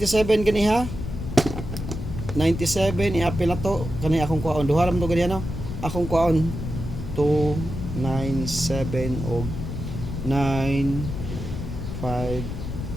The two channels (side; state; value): left; noise; rumble, 6 dB below the sound